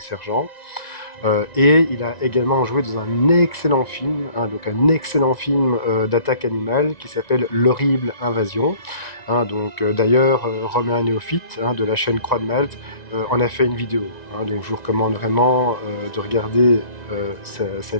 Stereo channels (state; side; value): late; right; 1.9 ms